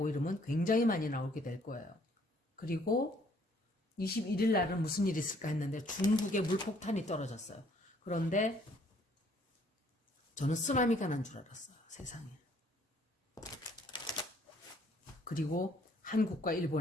이러면 굉장히 많이 나오게 될 거예요. 그리고 21일 날은 무슨 일이 있을까 했는데 중국에 물폭탄이 떨어졌어요. 그런데 저는 쓰나미가 난 줄 알았어요. 세상에. 그리고 한국과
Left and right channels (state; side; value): normal; both; correlation 0.63